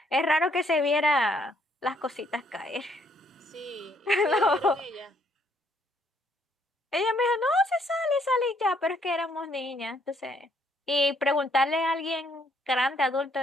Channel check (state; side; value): normal; both; correlation 0.68